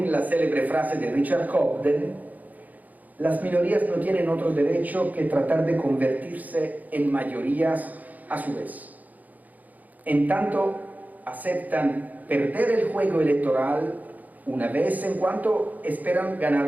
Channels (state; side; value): late; left; 0.080 ms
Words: la célebre frase de Richard Cobden, las minorías no tienen otro derecho que tratar de convertirse en mayorías a su vez. En tanto, aceptan perder el juego electoral una vez en cuanto esperan